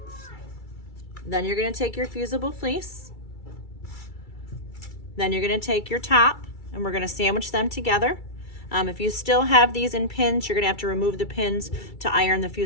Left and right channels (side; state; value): right; late; 2.3 ms